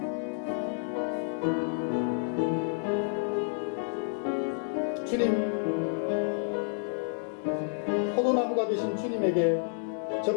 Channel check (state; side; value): silent; right; digital silence